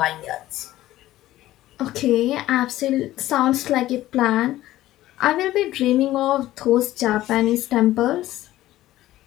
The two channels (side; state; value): right; quieter; 15.1 dB